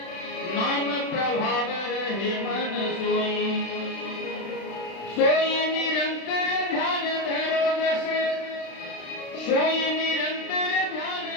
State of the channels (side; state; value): right; late; 36 ms